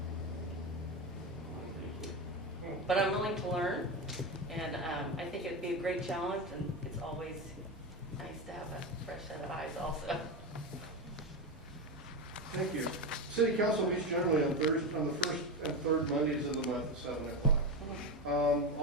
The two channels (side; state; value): both; normal; correlation 0.17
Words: Thank you. But I'm willing to learn, and I think it'd be a great challenge, and it's always nice to have a fresh set of eyes also. Thank you. City council meets generally on the first and third Mondays of the month at 7 o'clock.